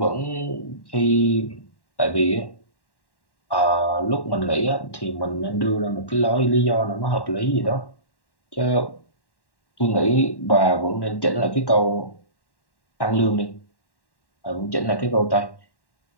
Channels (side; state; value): right; late; 1.1 ms